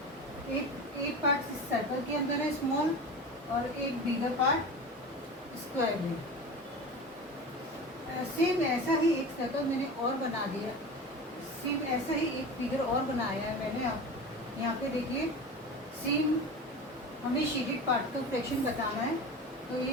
8 पार्ट इस सर्कल के अंदर है स्मॉल, और एक बिगर पार्ट स्क्वायर है। सेम ऐसा ही एक सर्कल मैंने और बना दिया। सेम ऐसा ही एक फिगर और बनाया है मैंने। आप यहाँ पे देखिए, सेम हमें शेडेड पार्ट का फ्रैक्शन बताना है। तो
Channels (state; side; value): normal; both; correlation 0.31